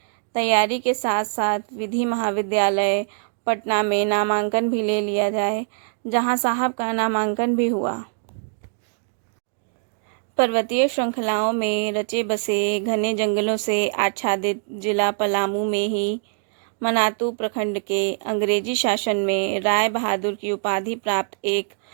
तैयारी के साथ साथ विधि महाविद्यालय पटना में नामांकन भी ले लिया जाए, जहां साहब का नामांकन भी हुआ। पर्वतीय श्रृंखलाओं में रचे बसे घने जंगलों से आच्छादित जिला पलामू में ही मनातू प्रखंड के अंग्रेजी शासन में राय बहादुर की उपाधि प्राप्त एक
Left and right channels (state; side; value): silent; left; digital silence